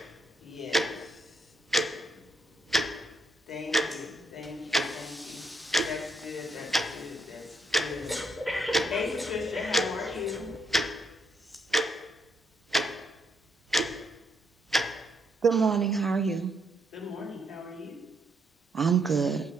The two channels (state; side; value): normal; both; correlation 0.77